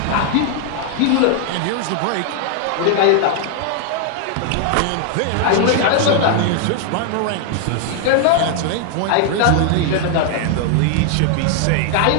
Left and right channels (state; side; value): different; both; correlation 0.00